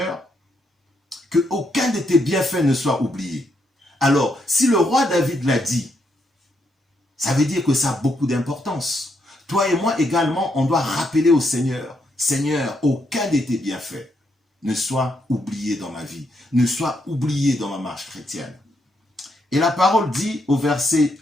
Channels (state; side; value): normal; both; correlation 0.77